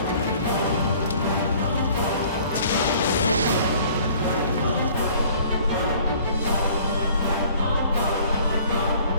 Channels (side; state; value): both; inverted; correlation -0.53